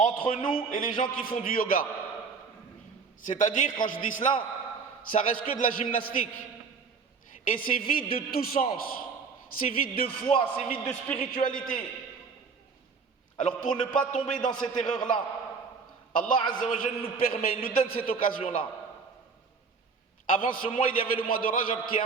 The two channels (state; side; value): quieter; left; 5.2 dB